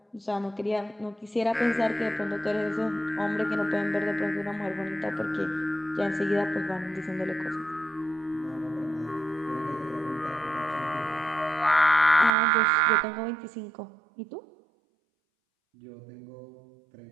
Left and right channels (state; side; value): drops out; left; at 12.3 s